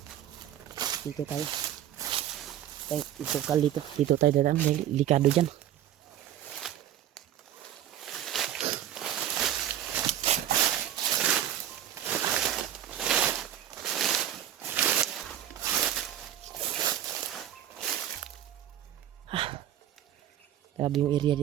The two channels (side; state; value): left; quieter; 11.4 dB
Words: Dito tayo dito tayo dadaan dahil likado dyan. Grabe yung area